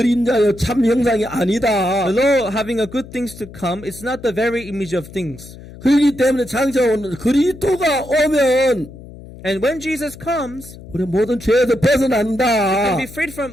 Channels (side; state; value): left; noise; hum, 17 dB below the sound